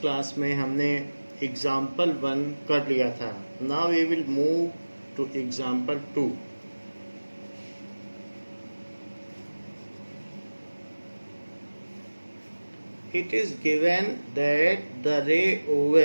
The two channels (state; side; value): inverted; both; correlation -1.00